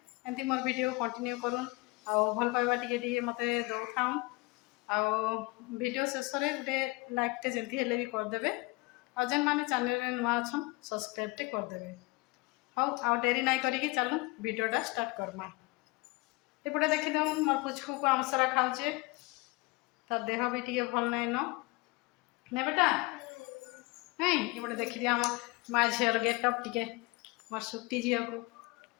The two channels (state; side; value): quieter; right; 24.6 dB